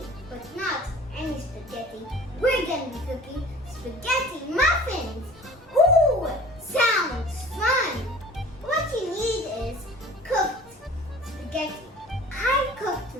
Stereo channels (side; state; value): both; normal; correlation 0.45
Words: but not any spaghetti. We're going to be cooking spaghetti muffins. Ooh, sounds fun. What you need is cooked spaghetti. I cooked